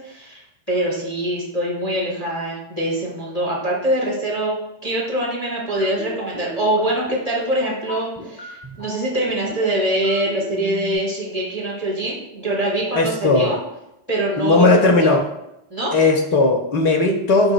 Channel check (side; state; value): right; late; 3.9 ms